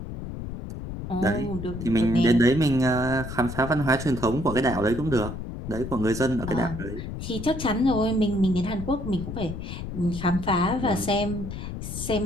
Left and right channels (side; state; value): left; noise; rumble, 8 dB below the sound